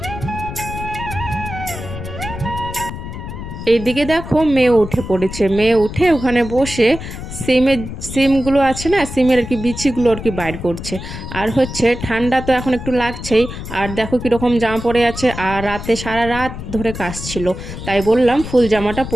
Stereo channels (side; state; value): left; noise; rumble, 9 dB below the sound